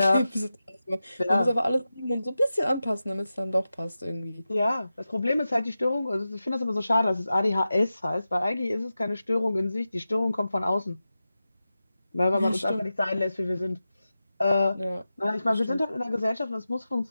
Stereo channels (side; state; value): both; inverted; correlation -0.92